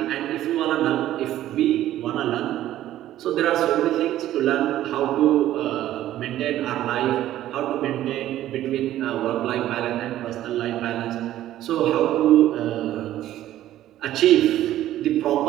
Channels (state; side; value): quieter; left; 13.3 dB